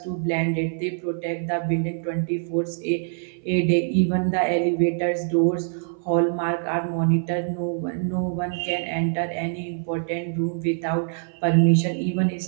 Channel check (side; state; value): left; silent; 57 dB below the other